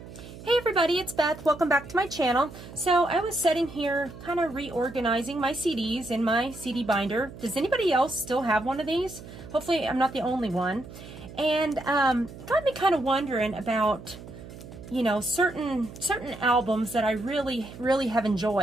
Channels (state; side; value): noise; right; hum, 15 dB below the sound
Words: Hey everybody, it's Beth. Welcome back to my channel. So I was sitting here kind of reorganizing my CDs in my CD binder. Does anybody else still have one of these? Hopefully I'm not the only one. And got me kind of wondering about, you know, certain albums that I really have